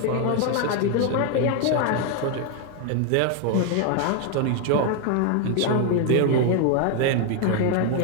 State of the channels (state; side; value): different; both; correlation 0.01